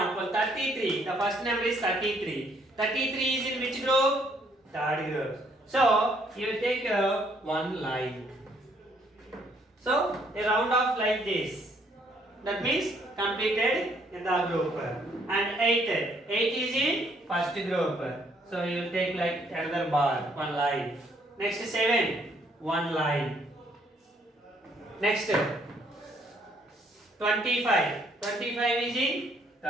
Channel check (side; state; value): both; normal; correlation 0.67